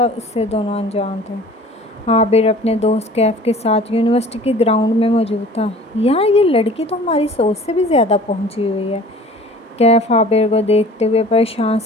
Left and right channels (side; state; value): both; normal; correlation 0.46